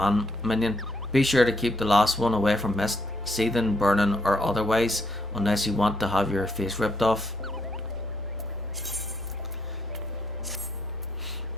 minion. Be sure to keep the last one away from mist, seething, burning, or otherwise, unless you want to have your face ripped off.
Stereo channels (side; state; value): both; normal; correlation 0.74